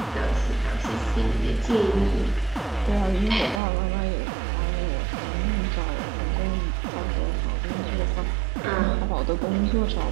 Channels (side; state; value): left; drops out; at 3.6 s